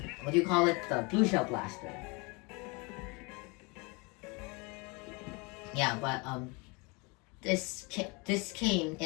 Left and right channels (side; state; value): right; quieter; 28.7 dB